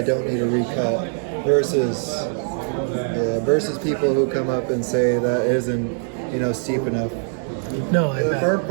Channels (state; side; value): silent; left; 64 dB below the other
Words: don't need to recut, versus people who come up and say that isn't, steep enough. No, I bet.